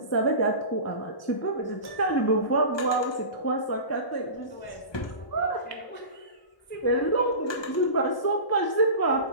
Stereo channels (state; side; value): late; right; 1.1 ms